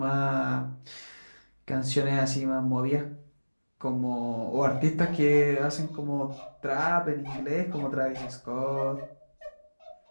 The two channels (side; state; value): both; inverted; correlation -1.00